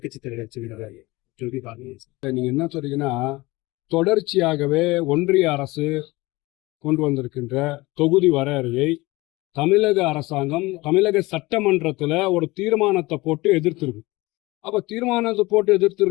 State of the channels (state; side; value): quieter; right; 21.5 dB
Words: தலைவர் சொல்லி பாருங்க. நீங்க என்ன சொல்றீங்கன்னா, தொடர்ச்சியாகவே ஒன்றிய அரசு கொண்டு வந்திருக்கின்ற தொகுதி வரையறையை தமிழக அரசாங்கம் தமிழக சட்டமன்றத்துல ஒரு தீர்மானத்தை போட்டு எதிர்த்திருக்கு. அப்ப தீர்மானத்தை போட்டு